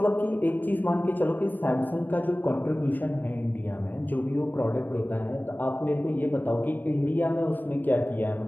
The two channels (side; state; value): right; late; 0.090 ms